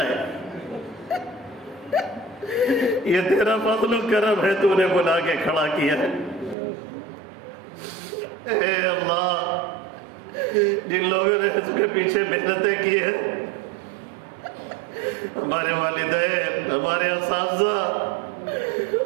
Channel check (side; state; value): left; drops out; at 6.6 s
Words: یہ تیرا فضل و کرم ہے، تو نے بلا کے کھڑا کیا ہے۔ اے اللہ جن لوگوں نے اس کے پیچھے محنتیں کی ہیں، ہمارے والدین، ہمارے اساتذہ،